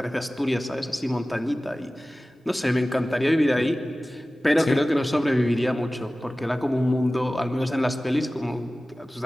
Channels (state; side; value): normal; both; correlation 0.97